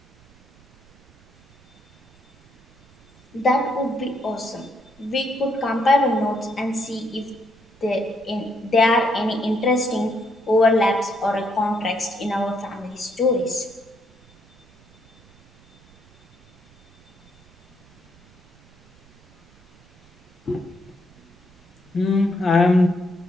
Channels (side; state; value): right; noise; rumble, 29 dB below the sound